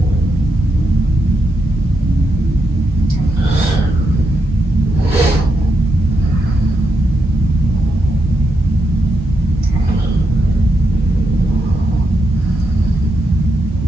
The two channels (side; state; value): both; normal; correlation 0.83